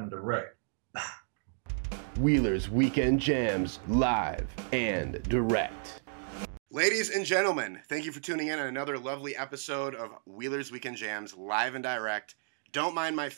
and direct. Wheeler's Weekend Jams live and direct. Ladies and gentlemen, thank you for tuning in on another lovely episode of Wheeler's Weekend Jams live and direct. Don't mind my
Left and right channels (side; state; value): left; silent; digital silence